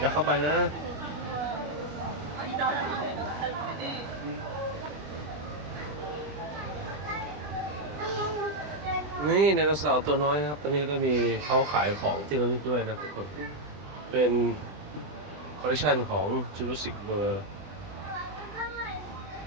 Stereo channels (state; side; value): late; left; 20 ms